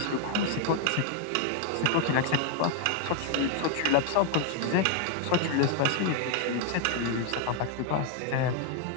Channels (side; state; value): both; different; correlation 0.01